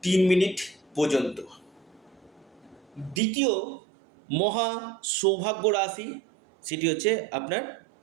3 মিনিট পর্যন্ত। দ্বিতীয় মহা সৌভাগ্য রাশি সেটি হচ্ছে আপনার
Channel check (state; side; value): drops out; left; at 3.2 s